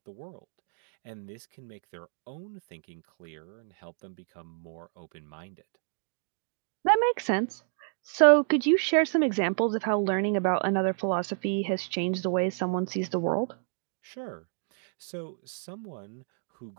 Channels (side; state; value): left; silent; digital silence